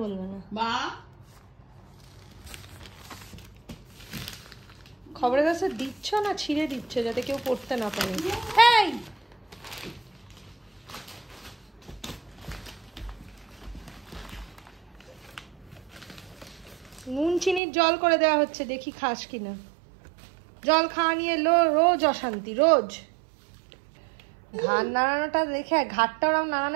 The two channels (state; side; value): drops out; left; at 17.6 s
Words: বলবে না। মা, খবরের কাছে দিচ্ছ না ছিঁড়ে দিচ্ছ যাতে কেউ পড়তে না পারে? এই নুন চিনির জল করে দেওয়া হচ্ছে, দেখি খাস কিনা। জল খাওয়া নিয়ে রোজ অশান্তি, রোজ। ঘাড় নাড়ানোটা দেখে, ঘাড়টা ওরকম